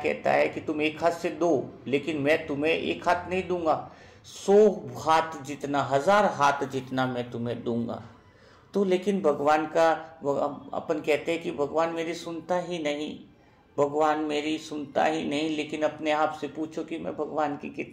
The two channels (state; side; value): identical; both; correlation 1.00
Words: है कि तुम एक हाथ से दो, लेकिन मैं तुम्हें एक हाथ नहीं दूंगा, 100 हाथ जितना, 1000 हाथ जितना मैं तुम्हें दूंगा। तो लेकिन भगवान का अपन कहते हैं कि भगवान मेरी सुनता ही नहीं, भगवान मेरी सुनता ही नहीं, लेकिन अपने आप से पूछो कि मैं भगवान की